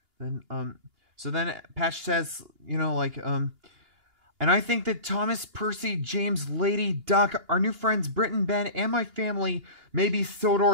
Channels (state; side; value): late; left; 2.8 ms